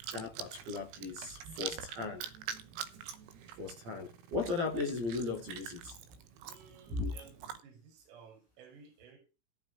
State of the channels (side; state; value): left; late; 18 ms